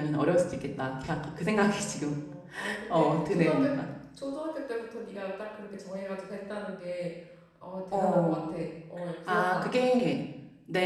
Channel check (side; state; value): both; identical; correlation 1.00